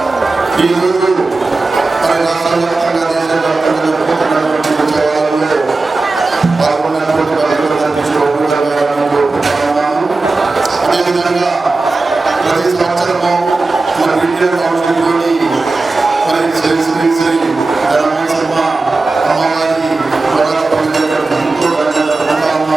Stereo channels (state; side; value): quieter; left; 3.6 dB